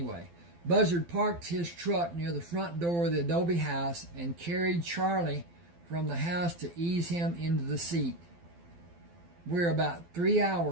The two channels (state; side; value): late; left; 12 ms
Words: Buzzard parked his truck near the front door of the adobe house and carried Charlie from the house to ease him into the seat. We're about 3